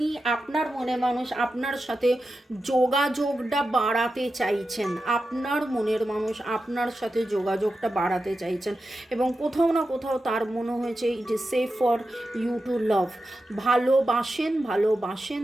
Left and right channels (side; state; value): both; normal; correlation 0.90